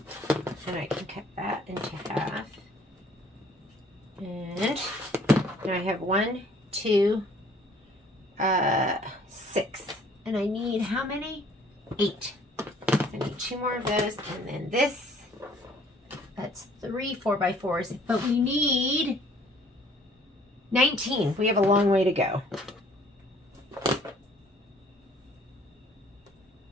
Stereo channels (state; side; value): normal; both; correlation 0.58